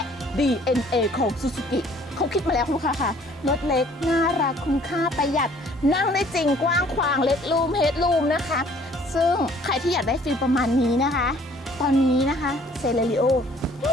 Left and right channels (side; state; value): both; normal; correlation 0.57